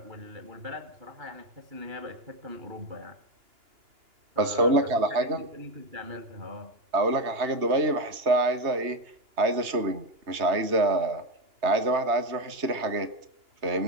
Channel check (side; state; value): left; late; 2.9 ms